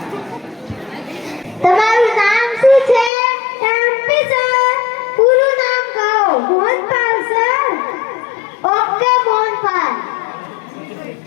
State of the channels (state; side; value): drops out; right; at 3.1 s